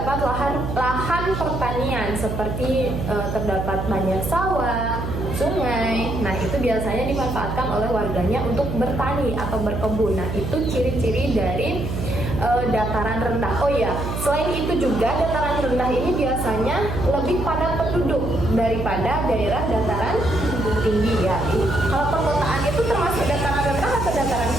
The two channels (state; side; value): noise; right; hum, 4 dB below the sound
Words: lahan pertanian seperti terdapat banyak sawah, sungai. Nah, itu biasanya dimanfaatkan oleh warganya untuk bertani atau berkebun. Nah, itu ciri-ciri dari dataran rendah. Oh ya, selain itu juga dataran rendah ini biasanya lebih padat penduduk daripada daerah dataran tinggi ya. Kalau perkotaan itu termasuk dataran rendah atau dataran